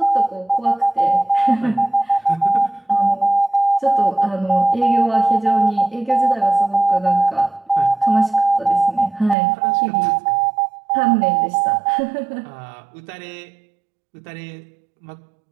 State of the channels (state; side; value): drops out; left; at 9.3 s